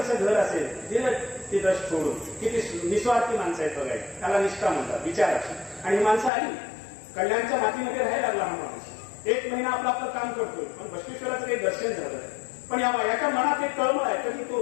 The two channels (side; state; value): right; drops out; at 6.3 s